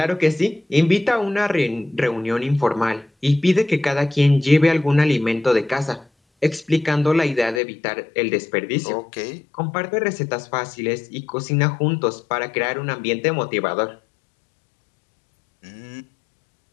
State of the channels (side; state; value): right; drops out; at 7.6 s